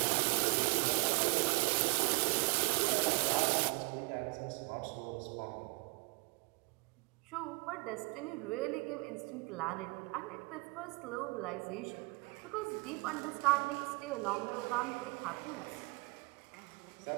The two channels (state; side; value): quieter; left; 29.5 dB